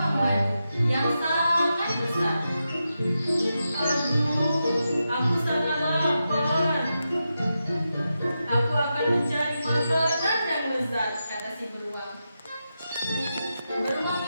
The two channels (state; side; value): inverted; both; correlation -0.88